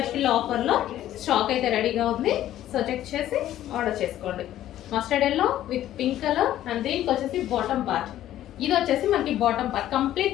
ఆఫర్లో స్టాక్ అయితే రెడీగా ఉంది. సో చెక్ చేసి ఆర్డర్ చేసుకోండి. Mustard yellow with pink colour. And దీనికి వచ్చేసి బాటమ్ పార్ట్. ఇది వచ్చేసి మనకి bottom part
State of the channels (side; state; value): right; quieter; 12.8 dB